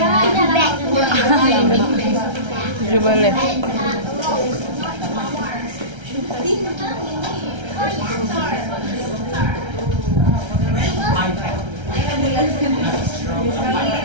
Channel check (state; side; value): late; left; 1.3 ms